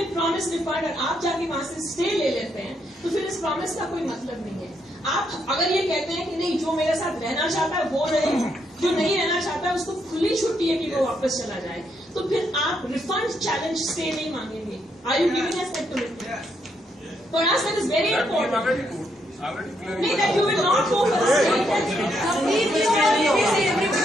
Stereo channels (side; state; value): both; normal; correlation 0.76